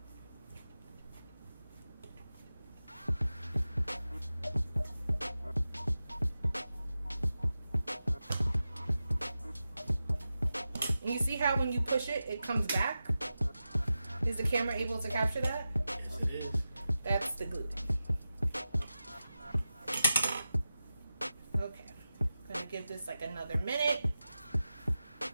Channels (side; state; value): both; inverted; correlation -0.92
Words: And you see how when you push it, it comes back? Is the camera able to capture that? Yes, it is. That's the gluten. Okay, I'm gonna give this like another minute.